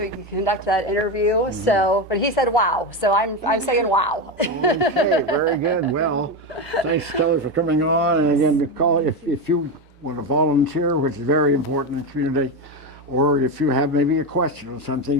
we can conduct that interview. So, but he said wow. So I'm saying wow. Okay, very good. Well, thanks, Kelly, for coming on. And again, call if you want to volunteer, which is very important in the community, or if you have maybe a question or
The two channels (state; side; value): normal; both; correlation 0.15